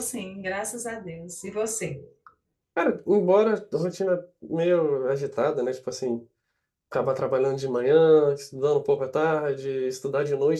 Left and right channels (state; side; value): identical; both; correlation 1.00